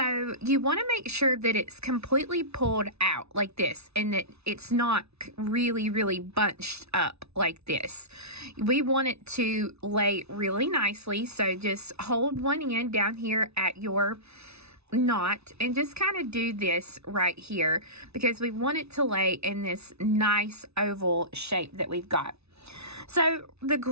you want to make sure that it's completely pulled out like this and that it's not really bunched up like this. We want it to lay really nicely, so just hold one end down here at your knot and just kind of do this right here because we want it to lay in this nice oval shape that we've got. So the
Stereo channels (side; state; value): left; late; 0.80 ms